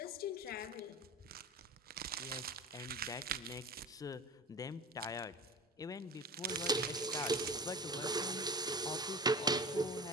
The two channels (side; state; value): both; normal; correlation 0.33